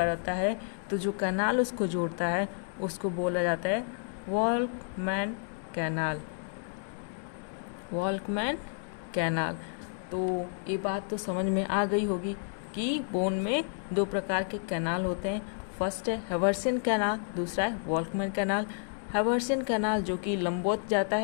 रहता है, तो जो कैनाल उसको जोड़ता है उसको बोला जाता है वॉल्कमैन कैनाल। वॉल्कमैन कैनाल। तो ये बात तो समझ में आ गई होगी कि बोन में दो प्रकार के कैनाल होते हैं। फर्स्ट है हेर्वेसियन कैनाल, दूसरा है वॉल्कमैन कैनाल। हेर्वेसियन कैनाल जो कि लंबवत जाता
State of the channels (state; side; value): silent; right; 57 dB below the other